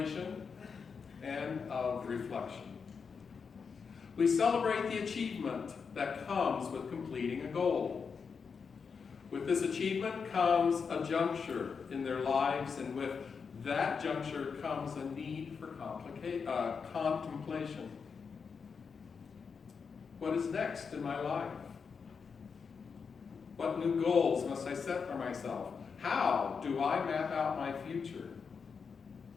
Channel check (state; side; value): quieter; right; 5.7 dB